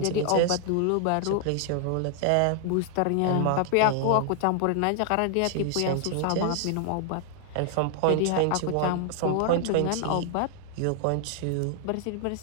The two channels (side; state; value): both; different; correlation 0.00